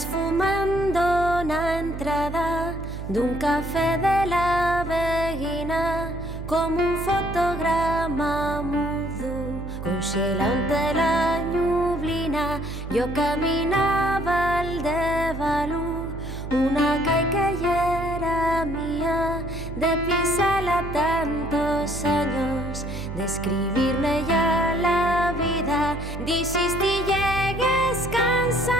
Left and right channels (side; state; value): right; noise; hum, 8 dB below the sound